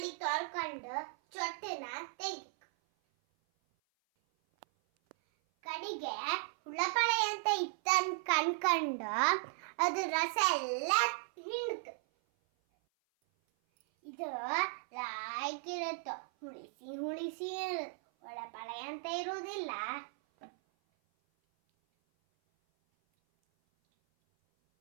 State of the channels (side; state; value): left; silent; 53 dB below the other